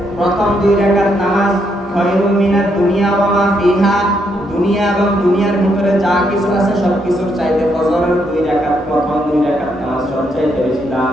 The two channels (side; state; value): both; normal; correlation 0.76